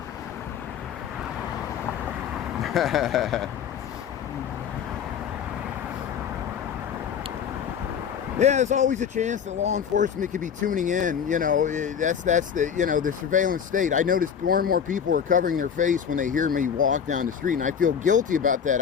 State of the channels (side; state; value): right; quieter; 7.7 dB